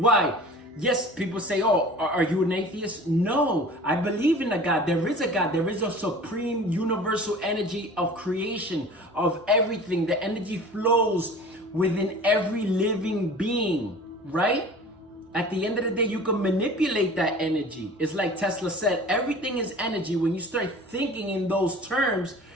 Yes, people say, oh, are you an atheist? No, I believe in a God. There is a God. There is a supreme universal energy of creation, of everything. The energy flows within every living being, right? At the end of the day, you can manipulate that energy. It's like Tesla said, everything is energy. When you start thinking in those terms,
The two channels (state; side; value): normal; both; correlation 0.42